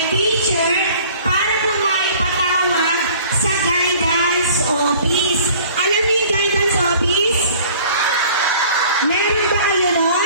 teacher para po maipatawag sa guidance office. Alam niyo yung guidance office? Meron ba kayo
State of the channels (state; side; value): inverted; both; correlation -0.50